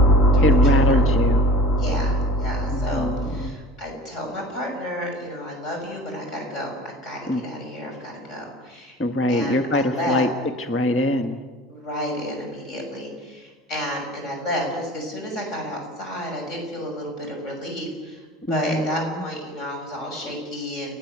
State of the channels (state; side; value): normal; both; correlation 0.40